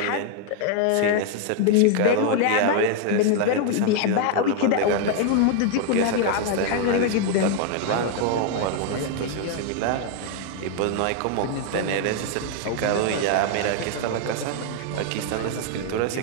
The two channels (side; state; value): both; different; correlation 0.00